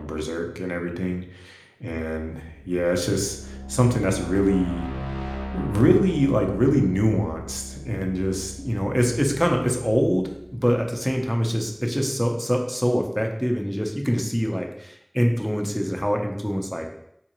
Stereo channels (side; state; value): both; identical; correlation 1.00